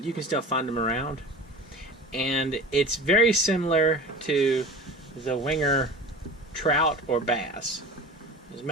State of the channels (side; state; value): both; normal; correlation 0.36